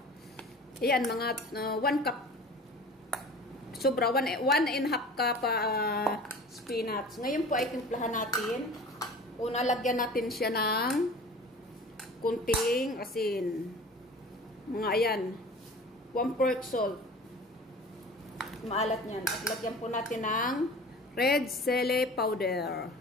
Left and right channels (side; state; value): both; normal; correlation 0.41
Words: ayan mga 1 cup. Sobra, 1.5 cup spinach. Ngayon po ay timplahan natin. Una, lagyan natin siya ng kunting asin. Mga ayan. 1/4 salt. Maalat niyan. At lagyan po natin ng red chili powder.